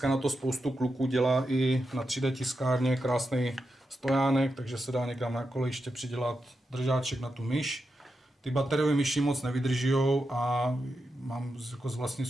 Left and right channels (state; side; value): normal; both; correlation 0.88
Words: na to spoustu kluků dělá i na 3D tiskárně krásný stojánek, takže se dá někam na kolejiště přidělat držáček na tu myš. Ty bateriové myši moc nevydržijou a mám jako z vlastní